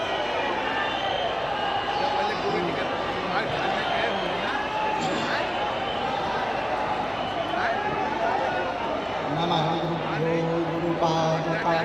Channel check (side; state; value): both; identical; correlation 1.00